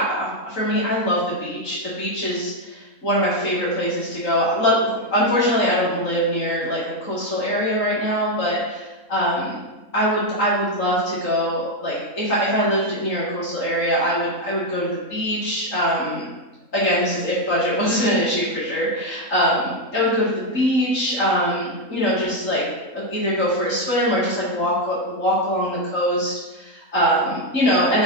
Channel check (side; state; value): right; late; 3.7 ms